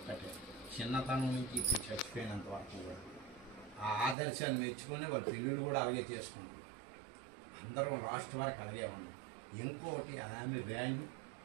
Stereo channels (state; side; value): drops out; left; at 4.2 s